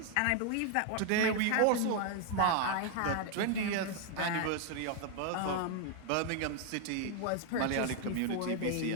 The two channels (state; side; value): different; both; correlation 0.00